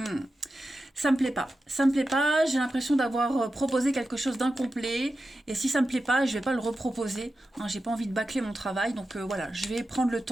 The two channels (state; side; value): normal; both; correlation 0.91